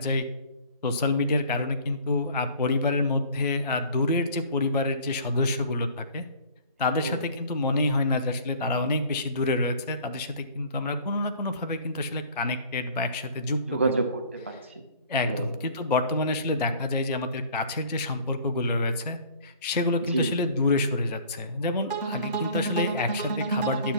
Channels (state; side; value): inverted; both; correlation -0.49